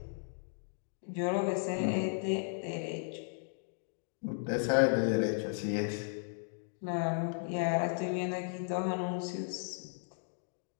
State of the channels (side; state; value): right; silent; digital silence